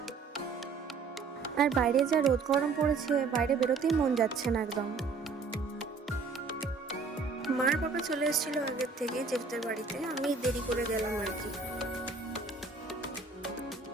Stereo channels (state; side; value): quieter; left; 4.7 dB